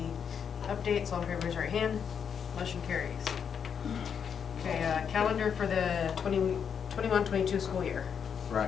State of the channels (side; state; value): right; quieter; 7.3 dB